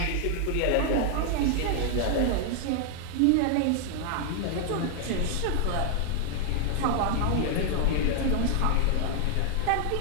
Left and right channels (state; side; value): different; both; correlation 0.00